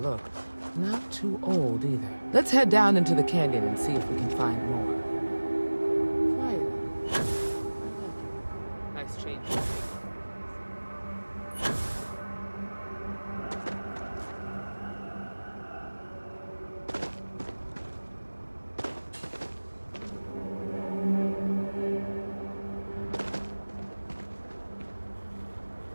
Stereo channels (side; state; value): both; inverted; correlation -1.00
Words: Not too old either. Let's head down into the canyon and see if we can find more. Quiet. Nice change.